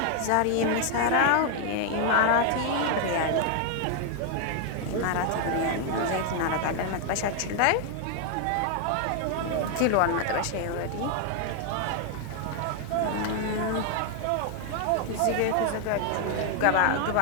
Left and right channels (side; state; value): both; different; correlation 0.00